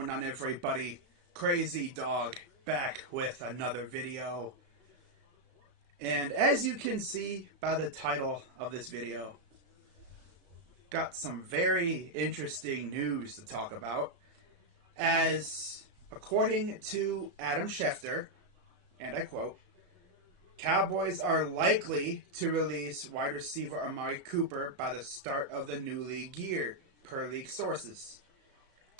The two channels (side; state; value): left; late; 33 ms